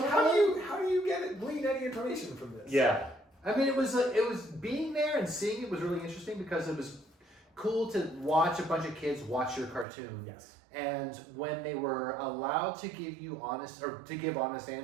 how do you glean any information from this? Yeah. I mean, it was being there and seeing it was really interesting because it was cool to watch a bunch of kids watch your cartoon. Yes. And when they were allowed to give you honest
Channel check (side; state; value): left; drops out; at 9.9 s